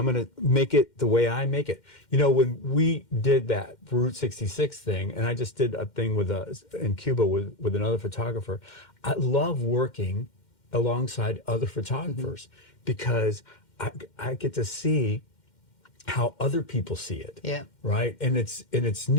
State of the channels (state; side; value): late; right; 2.1 ms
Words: going to make it the way I make it. When we did that Route 66 thing, and I just did a thing in Cuba with another photographer, I love working alongside other photographers because I get to see how other people see it. Yeah. Right. And it's